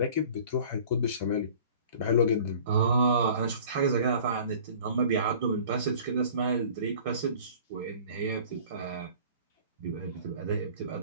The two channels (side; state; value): both; inverted; correlation -0.47